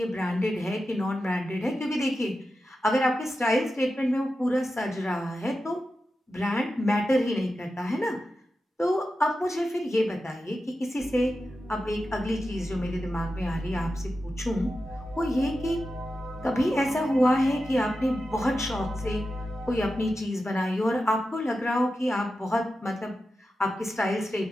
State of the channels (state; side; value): normal; both; correlation 0.91